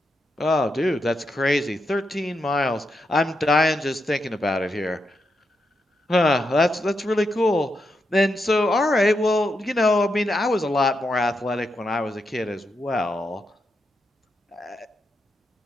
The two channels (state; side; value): normal; both; correlation 0.84